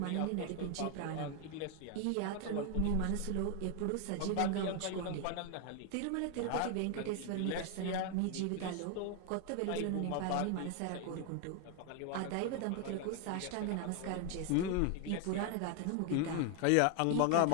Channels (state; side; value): different; both; correlation 0.00